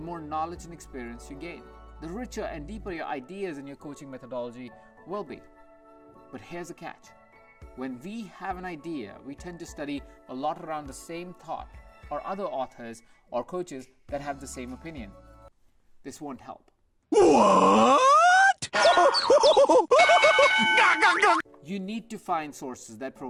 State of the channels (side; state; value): both; identical; correlation 1.00